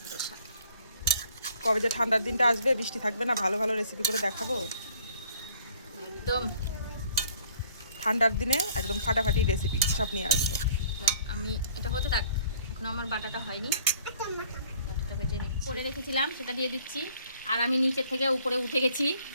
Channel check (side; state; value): both; inverted; correlation -0.57